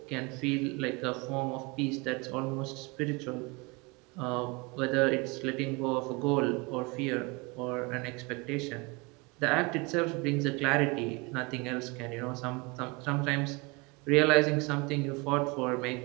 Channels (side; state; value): left; quieter; 27.1 dB